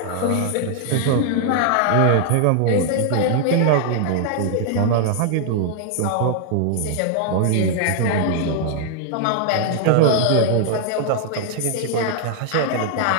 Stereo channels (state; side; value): different; both; correlation 0.00